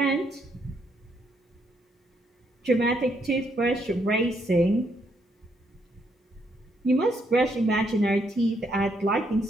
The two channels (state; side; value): normal; both; correlation 0.74